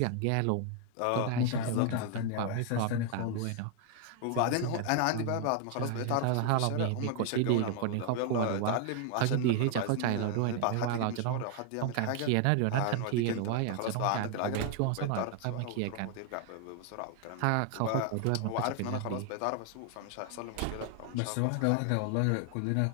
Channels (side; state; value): both; different; correlation 0.00